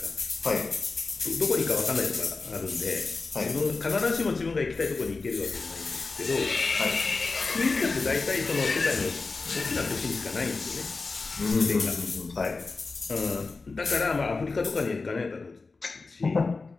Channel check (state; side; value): quieter; right; 4.0 dB